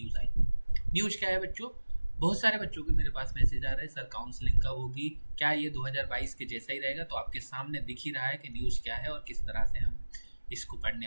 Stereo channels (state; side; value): inverted; both; correlation -1.00